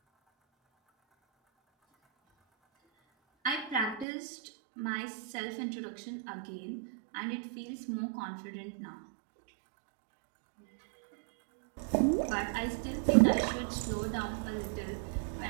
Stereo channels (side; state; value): left; drops out; at 4.0 s